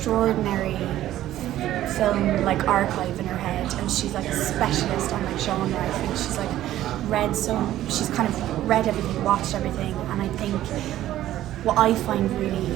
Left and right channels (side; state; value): left; quieter; 13.5 dB